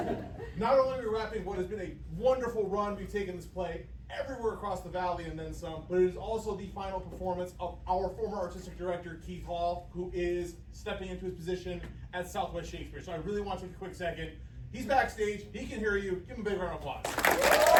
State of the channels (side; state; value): both; identical; correlation 1.00